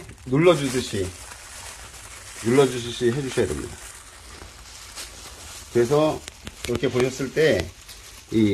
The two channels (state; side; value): identical; both; correlation 1.00